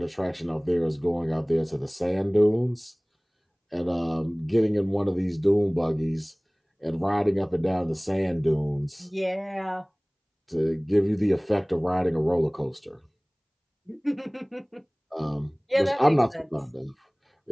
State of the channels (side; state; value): both; identical; correlation 1.00